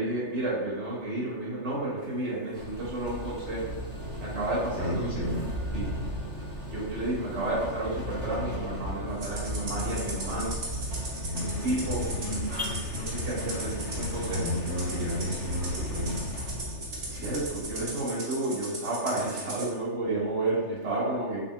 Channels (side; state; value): left; late; 3.4 ms